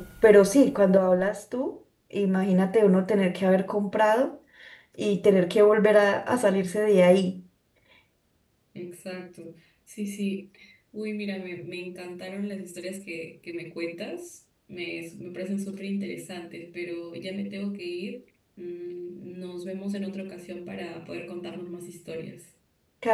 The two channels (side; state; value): both; identical; correlation 1.00